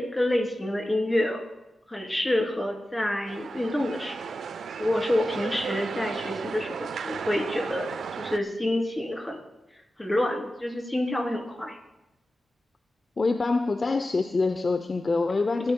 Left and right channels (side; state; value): both; normal; correlation 0.93